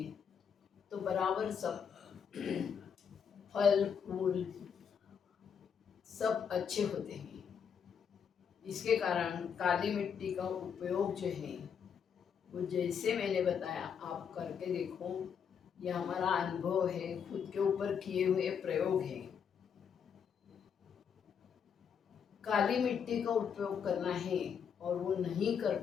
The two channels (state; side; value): quieter; right; 7.2 dB